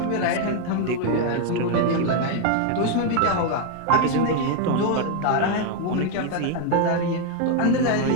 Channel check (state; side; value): different; both; correlation 0.00